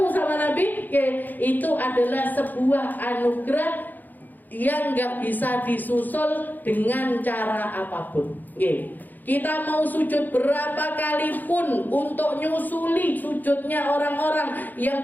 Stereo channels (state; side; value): late; right; 0.085 ms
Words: sama Nabi, itu adalah sebuah anugerah yang nggak bisa disusul dengan cara apapun. Kita mau sujud berapa kali pun untuk nyusuli sujudnya orang-orang